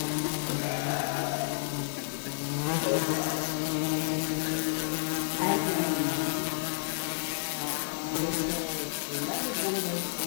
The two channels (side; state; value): right; silent; digital silence